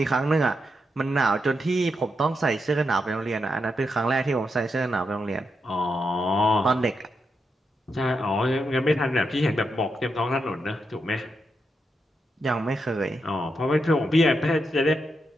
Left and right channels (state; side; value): normal; both; correlation 0.84